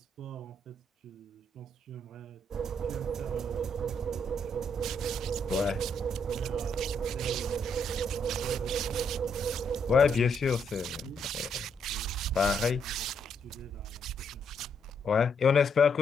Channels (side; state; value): both; normal; correlation 0.74